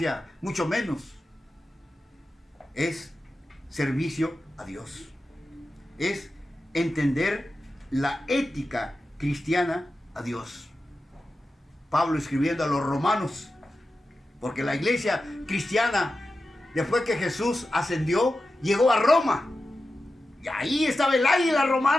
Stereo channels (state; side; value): normal; both; correlation 0.92